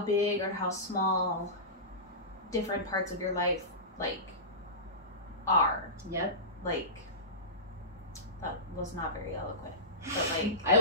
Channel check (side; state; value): both; normal; correlation -0.20